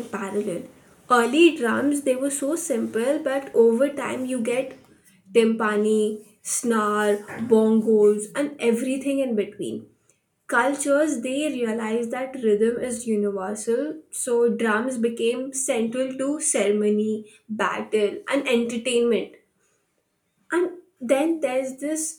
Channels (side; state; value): both; identical; correlation 1.00